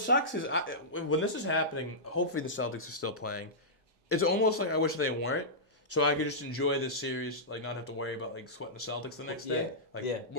is when this is happening. Hopefully the Celtics are still playing. It's almost like I wish they weren't. So I could just enjoy this series, not have to worry about sweating the Celtics the next day,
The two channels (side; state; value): both; normal; correlation -0.14